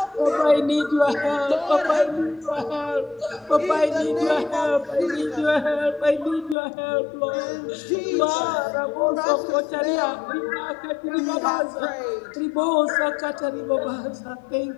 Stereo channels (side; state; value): right; drops out; at 6.6 s